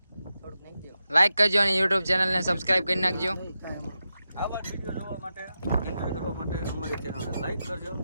લાઈક કરજો અને YouTube ચેનલ ને સબસ્ક્રાઇબ કરી નાખજો. આવા વિડીયો જોવા માટે એન્જોય કરવા માટે અમારી ચેનલને લાઈક કરજો,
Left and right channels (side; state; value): both; inverted; correlation -0.90